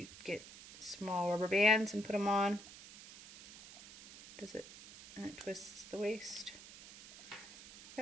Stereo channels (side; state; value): right; noise; hiss, 16 dB below the sound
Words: get small rubber bands and put them on. Does it? And it twists the waist.